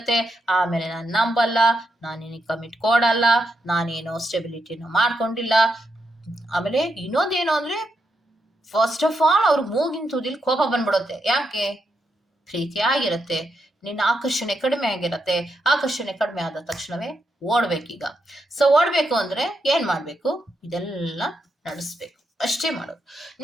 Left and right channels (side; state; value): both; normal; correlation 0.82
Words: ಆಮೇಲೆ ನಾನು ನಂಬಲ್ಲ, ನಾನೇನಿಗೆ ಕಮಿಟ್ ಕೊಡಲ್ಲ, ನಾನೇನೋ ಸ್ಟೆಬಿಲಿಟಿನ ಮಾಡ್ಕೊಂಡಿಲ್ಲ. ಆಮೇಲೆ ಇನ್ನೊಂದೇನು ಅಂದ್ರೆ ಫಸ್ಟ್ ಆಫ್ ಆಲ್ ಅವ್ರ ಮೂಗಿನ ತುದಿಲ್ ಕೋಪ ಬಂದ್ಬಿಡುತ್ತೆ. ಯಾಕೆ? ಪ್ರೀತಿ ಆಗಿರತ್ತೆ, ನಿನ್ನ ಆಕರ್ಷಣೆ ಕಡಿಮೆ ಆಗಿರತ್ತೆ. ಆಕರ್ಷಣೆ ಕಡಿಮೆ ಆದ ತಕ್ಷಣವೇ ಓಡ್ಬೇಕೀಗ. ಸೊ ಓಡ್ಬೇಕು ಅಂದ್ರೆ ಏನ್ ಮಾಡ್ಬೇಕು? ಇದೆಲ್ಲ ನಡೆಸ್ಬೇಕು. ಅಷ್ಟೇ ಮಾಡೋದು.